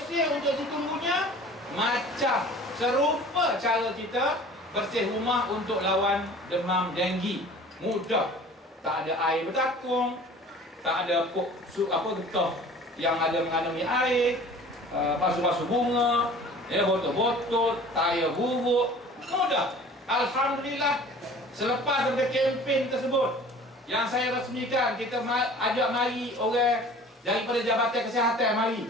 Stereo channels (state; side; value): normal; both; correlation 0.46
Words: untuk chikungunya macam serupa cara kita bersih rumah untuk lawan demam denggi. Mudah, tak ada air bertakung, tak ada getah yang ada mengandungi air, basuh-basuh bunga, ya, botol-botol, tayar buruk. Mudah. Alhamdulillah, selepas daripada kempen tersebut yang saya resmikan, kita ajak mari orang daripada Jabatan Kesihatan